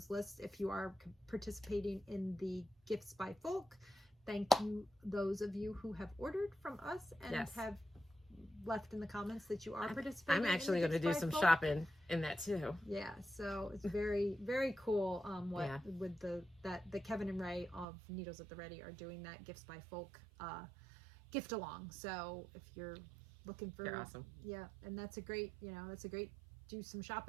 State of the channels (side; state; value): left; drops out; at 17.9 s